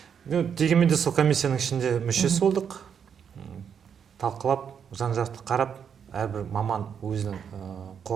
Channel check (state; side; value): quieter; left; 7.5 dB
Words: Дегенмен де сол комиссияның ішінде мүшесі болдық. Талқылап, жан-жақты қарап, әрбір маман өзінің